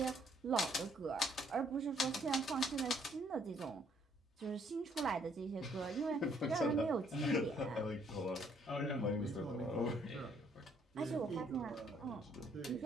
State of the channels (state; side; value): normal; both; correlation 0.66